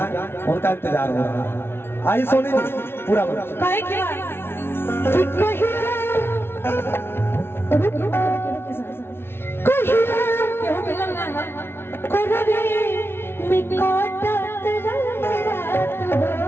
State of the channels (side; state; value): right; late; 0.12 ms